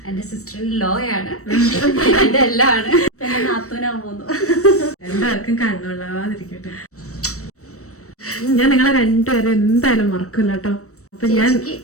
എന്റെ സിസ്റ്റർ ലോ ആണ്, എന്റെ എല്ലാം ആണ്. എന്റെ നാത്തൂനാൻ പോകുന്നു. രണ്ടാർക്കും കണ്ണുള്ളാതിരിക്കട്ടെ. ഞാൻ നിങ്ങളെ രണ്ടുപേരെ എന്തായാലും മറക്കില്ല കേട്ടോ. അപ്പൊ ഞാൻ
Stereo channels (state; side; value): late; right; 0.65 ms